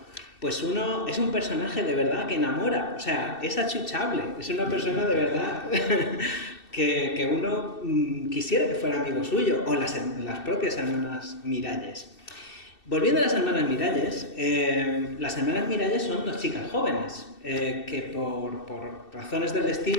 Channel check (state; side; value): late; right; 2.7 ms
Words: pues uno es un personaje de verdad que enamora. O sea, es achuchable, es una persona de verdad que uno quisiera que fuera amigo suyo, o las propias hermanas Miralles. Volviendo a las hermanas Miralles son dos chicas jóvenes que por razones del